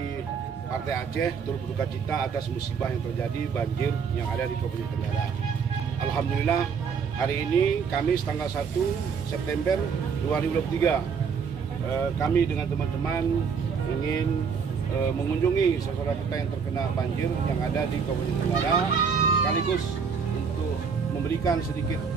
Partai Aceh turut berduka cita atas musibah yang terjadi banjir yang ada di Kabupaten Tenggara. Alhamdulillah hari ini Kamis tanggal 1 September 2023 kami dengan teman-teman ingin mengunjungi saudara kita yang terkena banjir yang ada di Kabupaten Tenggara, sekaligus untuk memberikan sedikit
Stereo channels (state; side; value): quieter; left; 6.1 dB